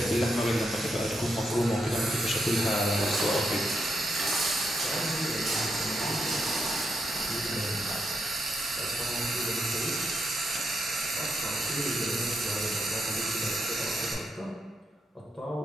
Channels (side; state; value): both; normal; correlation 0.82